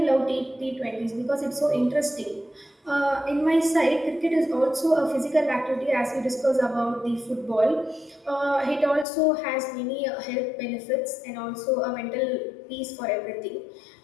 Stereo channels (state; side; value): drops out; right; at 9.1 s